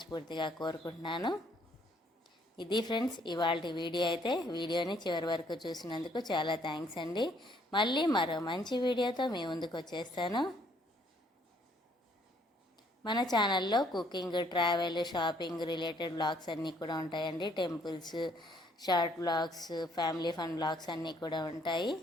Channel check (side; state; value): both; normal; correlation 0.65